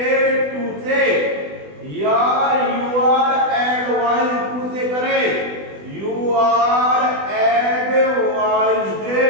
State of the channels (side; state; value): left; late; 20 ms